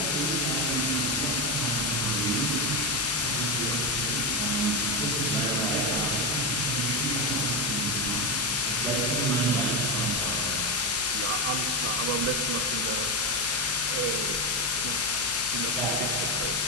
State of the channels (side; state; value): left; noise; hum, 21 dB below the sound